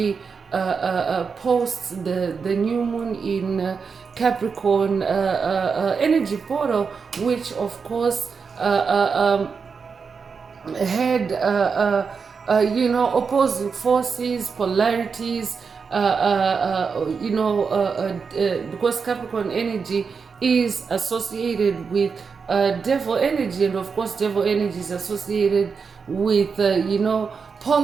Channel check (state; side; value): quieter; left; 5.5 dB